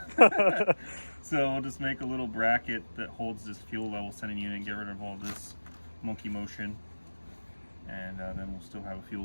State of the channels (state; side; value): inverted; both; correlation -1.00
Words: So we'll just make a little bracket that holds this fuel level sending unit and get rid of all this monkey motion. And then we'll still have a